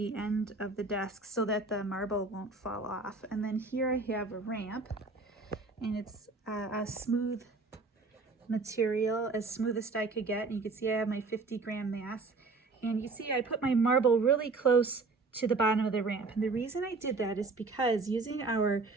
end of the desk so that the marble won't fall off. And then here I have a ramp, and it's a smooth material, as smoothest I could get. And you can see I have my 50-gram mass. And you see I put my marble really close to the bottom of the ramp. And the reason I did that is because using our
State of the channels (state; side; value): quieter; left; 3.8 dB